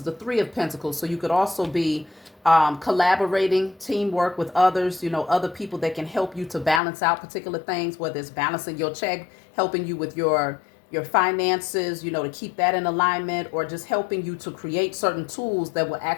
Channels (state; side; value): drops out; right; at 6.8 s